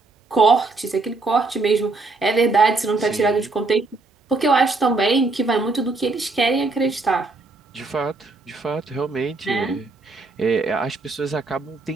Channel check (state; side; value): quieter; left; 3.6 dB